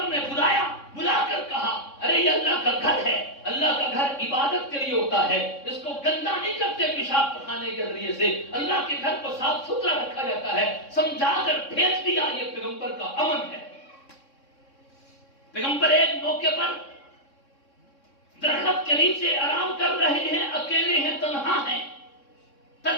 نے بلا کر کہا ارے یہ اللہ کا گھر ہے، اللہ کا گھر عبادت کے لیے ہوتا ہے، اس کو گندا نہیں کرتے پیشاب پخانے کے ذریعے سے، اللہ کے گھر کو صاف ستھرا رکھا جاتا ہے، سمجھا کر بھیج دیا۔ یہ پیغمبر کا امن ہے۔ پیغمبر ایک موقع پر درخت کے نیچے آرام کر رہے ہیں، اکیلے ہیں، تنہا ہیں،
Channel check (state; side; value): late; right; 3.6 ms